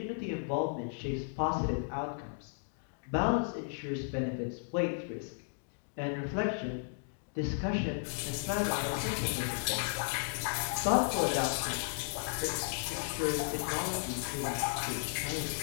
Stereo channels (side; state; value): right; silent; digital silence